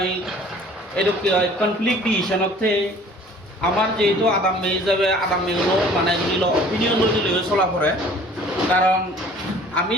এইটো কি হয় কনফ্লিক্ট ডিসিশনতে আমার যেহেতু আদাম মে হিসাবে আদাম মেগুলো মানে ধরিল অপিনিয়ন লৈ চলা পড়ে কারণ আমি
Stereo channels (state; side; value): normal; both; correlation 0.51